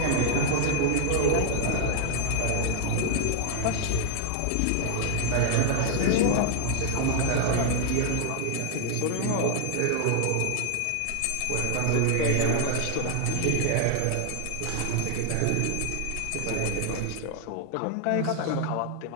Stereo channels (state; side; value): different; both; correlation -0.01